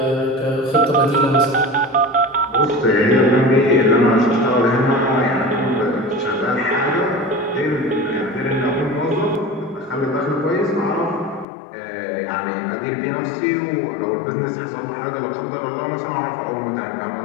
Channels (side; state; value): right; drops out; at 11.5 s